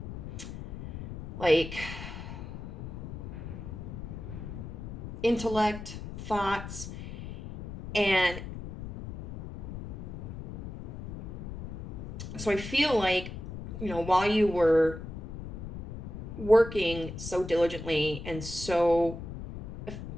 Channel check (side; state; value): left; noise; rumble, 10 dB below the sound